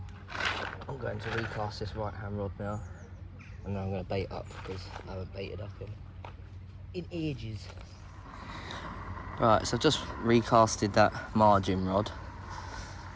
I'm going to recast this right hand rod now, and then I'm going to bait up because I haven't baited up in ages. Right, so I've just recasted that margin rod,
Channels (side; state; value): both; identical; correlation 1.00